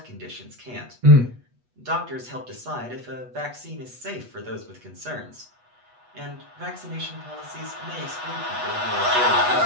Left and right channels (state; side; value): late; left; 8.2 ms